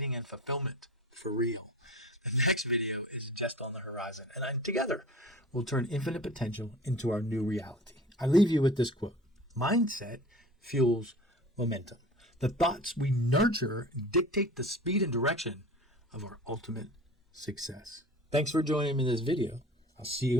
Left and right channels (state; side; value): normal; both; correlation 0.39